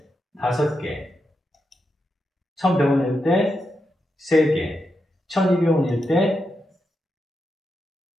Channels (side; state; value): both; normal; correlation 0.86